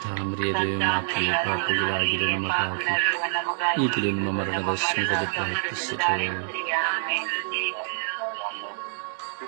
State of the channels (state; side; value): silent; left; 61 dB below the other